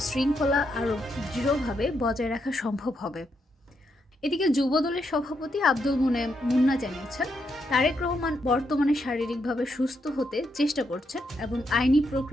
শৃঙ্খলা আরও দৃঢ়ভাবে বজায় রাখা সম্ভব হবে। এদিকে যুবদলের সভাপতি আব্দুল মুন্না জানিয়েছেন তারেক রহমান বর্তমানে শারীরিকভাবে সুস্থ হতে চেষ্টা করছেন এবং আইনি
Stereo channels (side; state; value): both; normal; correlation 0.80